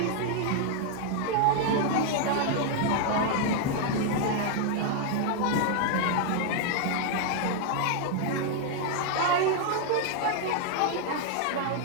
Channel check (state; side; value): different; both; correlation 0.00